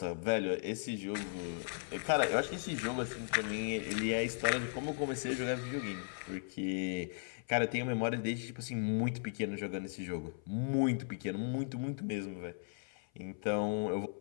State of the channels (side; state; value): right; silent; 53 dB below the other